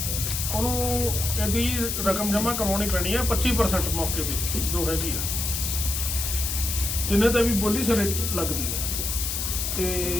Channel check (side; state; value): left; noise; hiss, 2 dB below the sound